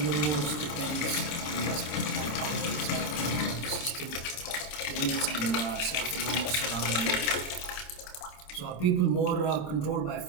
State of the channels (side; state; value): right; late; 26 ms